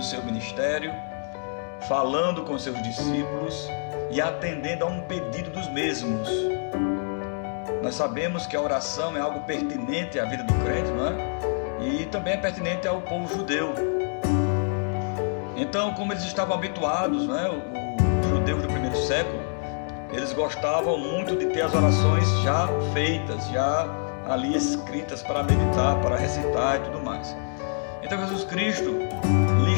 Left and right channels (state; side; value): silent; right; 61 dB below the other